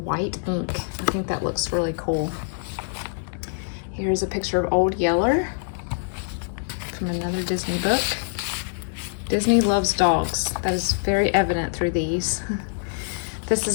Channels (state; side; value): silent; right; digital silence